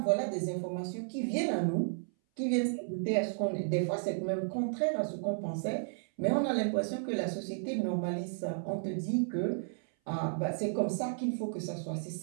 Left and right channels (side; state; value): left; silent; 56 dB below the other